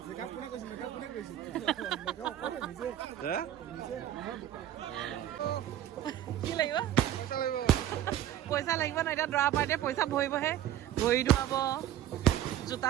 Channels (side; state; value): left; quieter; 12.0 dB